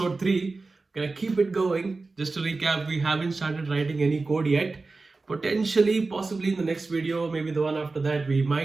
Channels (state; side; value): quieter; left; 3.7 dB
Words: 3. Gonna keep it going. Just to recap, we haven't started writing any code yet. Potentially, possibly in the next video, maybe the one after that, we